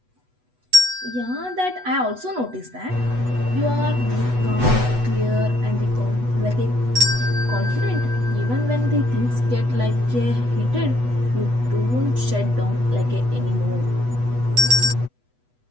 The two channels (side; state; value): left; late; 8.1 ms